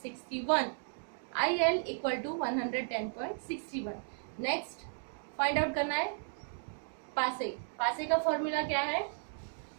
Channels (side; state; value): left; silent; digital silence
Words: IL equal to 110.61. Next find out करना है पासे. पासे का फॉर्मूला क्या है,